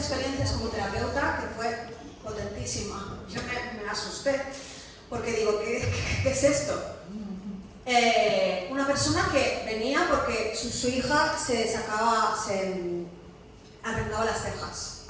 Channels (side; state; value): both; identical; correlation 1.00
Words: como terapeuta que fue potentísima. Yo me asusté, porque digo, ¿qué es esto? Una persona que venía porque su hija se arrancaba las cejas,